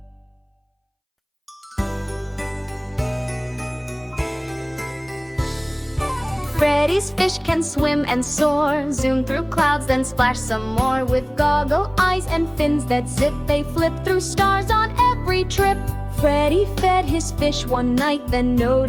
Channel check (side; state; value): both; identical; correlation 1.00